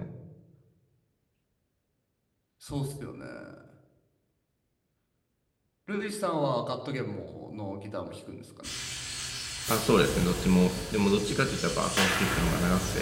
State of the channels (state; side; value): identical; both; correlation 1.00